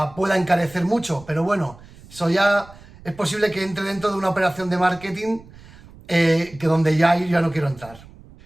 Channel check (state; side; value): noise; right; rumble, 21 dB below the sound